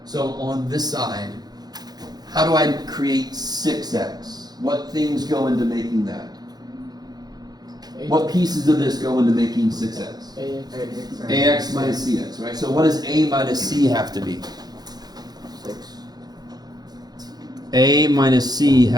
So on this side, how do I create 6x? What things go into making that? What pieces of this go into making 6x? AX. ax minus cx, right? So what does a minus c have to be? 6. A minus c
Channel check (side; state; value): left; late; 0.19 ms